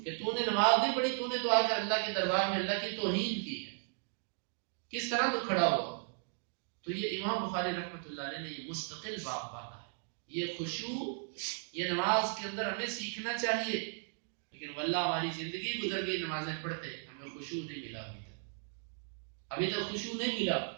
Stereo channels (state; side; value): silent; left; 54 dB below the other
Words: کہ تو نے نماز نہیں پڑھی، تو نے تو آ کر اللہ کے دربار میں اللہ کی توہین کی ہے، کس طرح تو کھڑا ہوا۔ تو یہ امام بخاری رحمۃ اللہ علیہ نے یہ مستقل باب باندھا ہے۔ یہ خشوع یہ نماز کے اندر ہمیں سیکھنا چاہیے، لیکن واللہ ہماری زندگی گزر گئی نمازیں پڑھتے، ہمیں خشوع نہیں ملا ابھی تک خشوع نہیں ملا۔